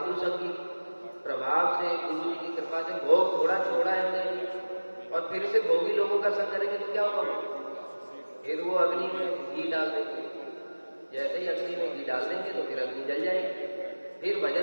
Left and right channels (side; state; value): both; inverted; correlation -1.00